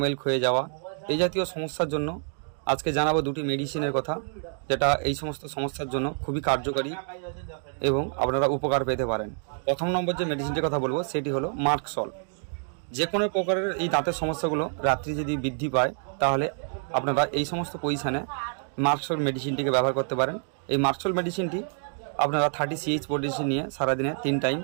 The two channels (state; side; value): silent; left; 57 dB below the other